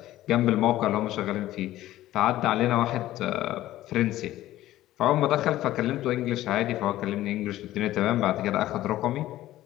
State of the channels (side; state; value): right; quieter; 14.8 dB